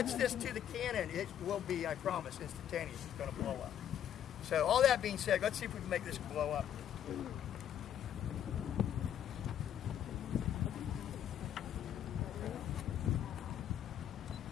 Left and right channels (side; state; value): right; quieter; 10.0 dB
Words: this to the cannon, it will be, I promise, instantaneous. It's going to blow up. So all that being said, let's see if we can make this blow up.